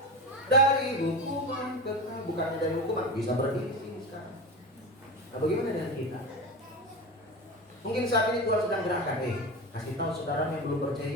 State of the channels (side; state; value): both; normal; correlation 0.24